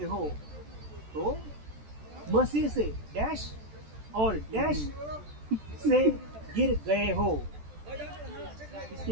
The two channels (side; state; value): left; late; 14 ms